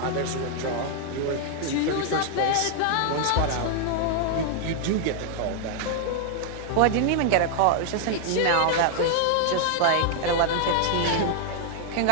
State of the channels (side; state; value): both; different; correlation 0.00